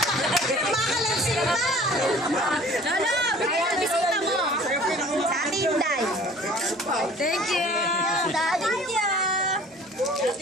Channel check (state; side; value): normal; both; correlation 0.49